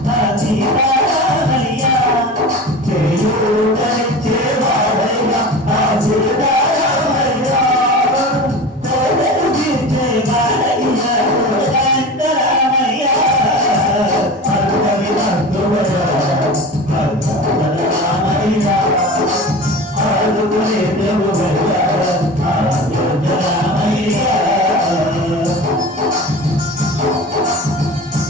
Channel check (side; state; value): both; normal; correlation 0.33